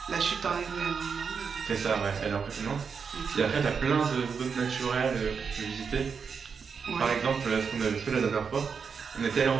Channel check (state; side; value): quieter; left; 6.0 dB